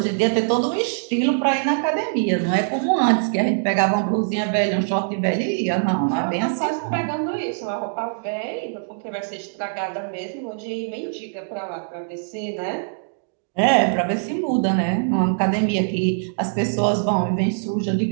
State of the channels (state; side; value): silent; left; digital silence